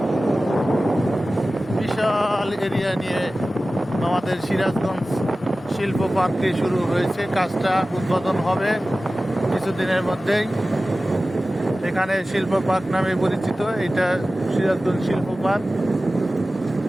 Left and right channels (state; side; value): normal; both; correlation 0.96